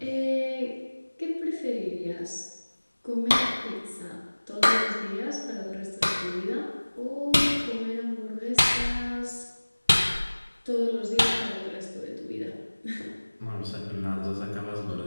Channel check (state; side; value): inverted; both; correlation -1.00